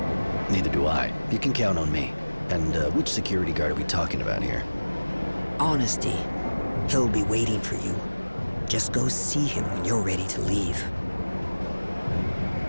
Neither do I. You can count on me. And which security guard are we talking about here? Honesty. He'll be waiting for you. Just go see him when you're ready to leave.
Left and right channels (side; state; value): both; inverted; correlation -1.00